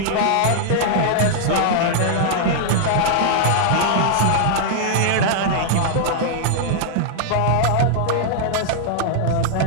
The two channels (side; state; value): both; different; correlation -0.01